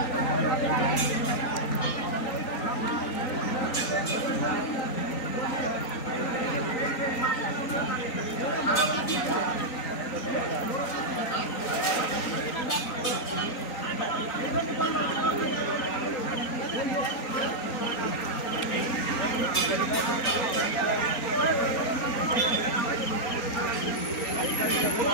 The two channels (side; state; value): right; late; 3.9 ms